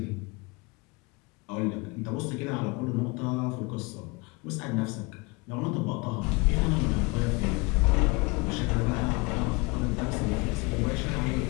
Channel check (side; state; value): right; quieter; 26.8 dB